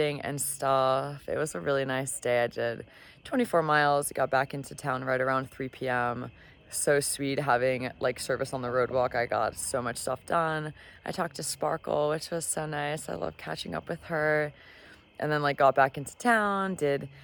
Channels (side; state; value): both; identical; correlation 1.00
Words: and stuff. It was a really nice day. I did 24 miles, got back into town right around 3 p.m. so sweet having like service on the road walk. I got so much stuff done. I talked to Sparkle, which was so nice. I love catching up with her. And then like got back into town, did